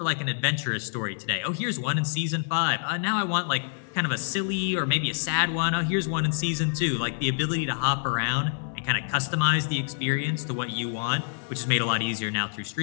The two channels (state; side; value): silent; right; digital silence